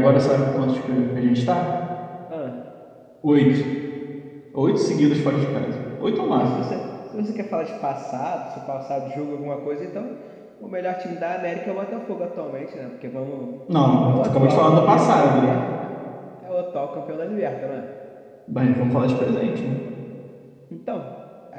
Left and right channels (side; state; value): both; identical; correlation 1.00